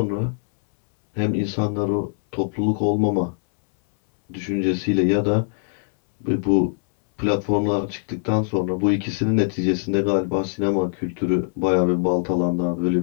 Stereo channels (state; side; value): silent; right; 64 dB below the other